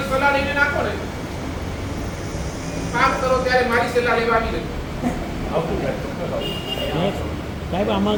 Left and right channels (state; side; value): identical; both; correlation 1.00